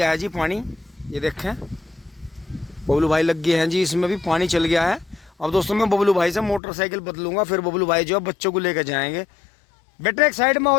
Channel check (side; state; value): right; drops out; at 6.6 s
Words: है जी पानी। ये देखें, बबलू भाई लग गए हैं जी, इसमें भी पानी चल गया है। अब दोस्तों मैं बबलू भाई से मोटरसाइकिल बदलूंगा, फिर बबलू भाई जो है बच्चों को लेकर जाएंगे। बेटे एक साइड में